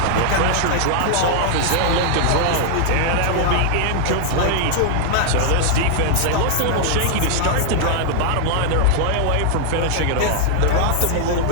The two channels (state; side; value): different; both; correlation -0.01